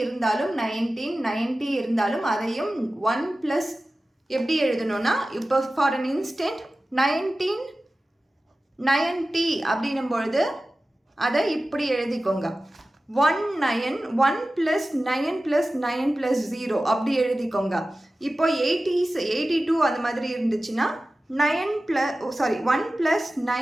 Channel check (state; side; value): normal; both; correlation 0.95